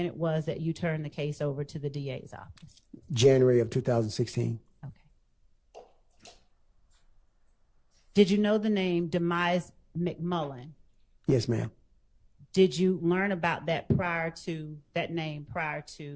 it was that you turned the case over to the DA's office? January of 2016. Okay. Did you know the name Demise McMullen? Yes, ma'am. Did you learn about that name prior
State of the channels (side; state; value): both; identical; correlation 1.00